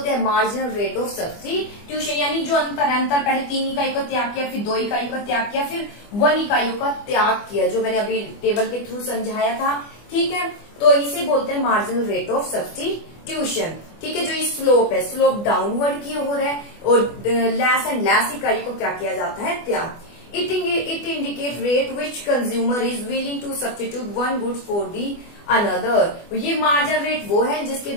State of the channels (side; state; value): right; late; 24 ms